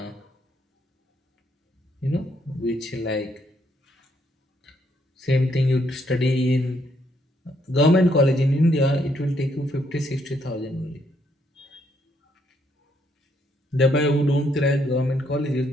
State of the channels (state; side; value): normal; both; correlation 0.73